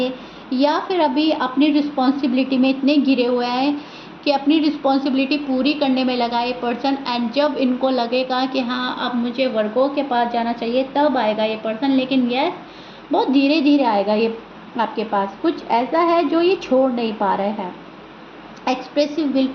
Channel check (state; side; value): identical; both; correlation 1.00